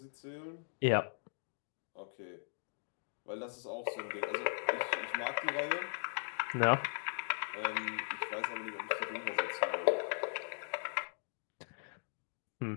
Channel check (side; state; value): right; silent; digital silence